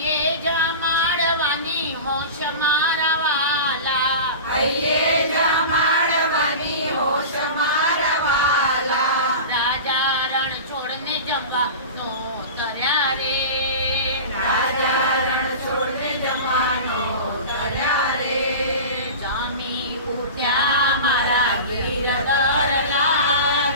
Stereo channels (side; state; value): both; inverted; correlation -0.31